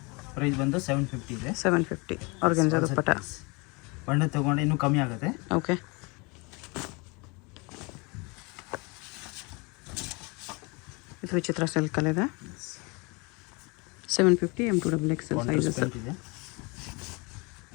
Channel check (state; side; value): quieter; right; 28.4 dB